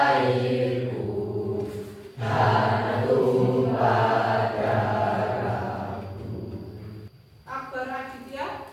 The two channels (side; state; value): both; identical; correlation 1.00